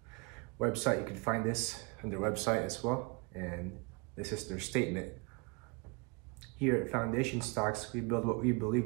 website. You can find this on their website as well. And this is their statement. Here at Foundation Stocks, we build what we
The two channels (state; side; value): quieter; left; 29.7 dB